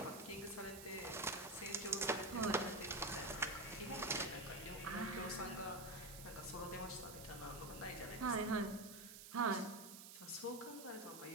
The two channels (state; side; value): noise; right; hiss, 12 dB below the sound